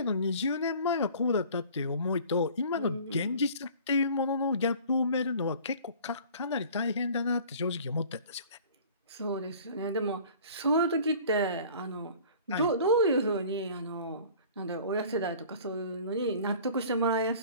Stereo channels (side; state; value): both; inverted; correlation -0.47